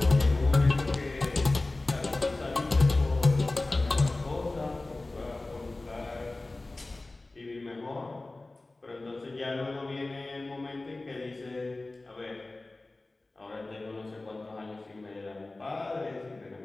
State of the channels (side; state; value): right; quieter; 3.0 dB